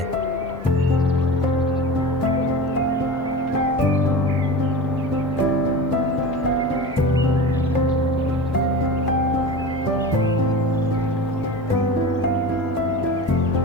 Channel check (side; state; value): both; normal; correlation 0.30